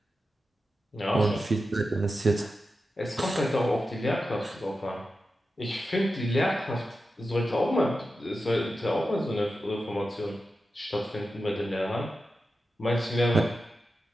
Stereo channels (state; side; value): normal; both; correlation 0.91